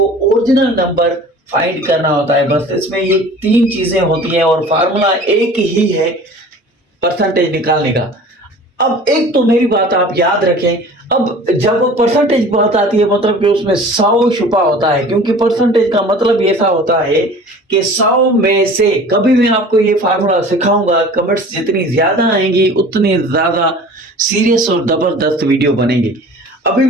ओरिजिनल नंबर फाइंड करना होता है। बस इसमें ये तीन चीजें होती हैं और फार्मूला एक ही है परसेंटेज निकालने का। अब एक तो मेरी बात आप याद रखें, अब जब परसेंटेज की बात आती है मतलब कि उसमें 100 छुपा होता है, क्योंकि परसेंटेज का मतलब ऐसा होता है कि 100 में से कभी मैं आपको ये फार्मूला सिखाऊंगा, कमेंट्स जितनी ज्यादा आएंगी उतनी ज्यादा सीरियस और जबरदस्त वीडियो बनेगी। अभी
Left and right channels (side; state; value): both; normal; correlation 0.43